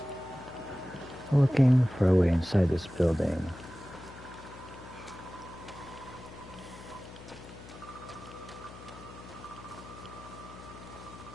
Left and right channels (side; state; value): left; noise; hum, 16 dB below the sound